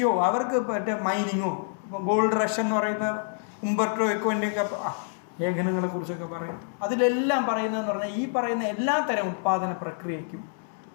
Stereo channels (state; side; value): silent; right; digital silence